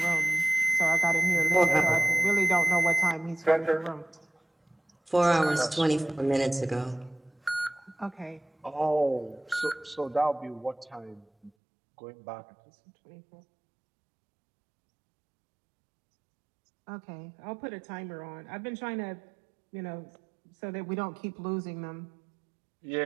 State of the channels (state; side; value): drops out; left; at 11.5 s